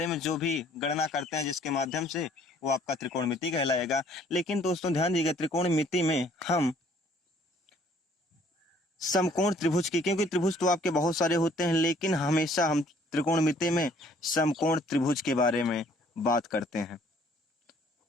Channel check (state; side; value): normal; both; correlation 0.60